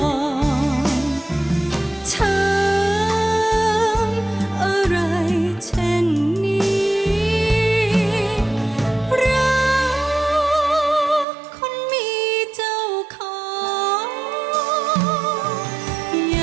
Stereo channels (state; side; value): drops out; left; at 11.2 s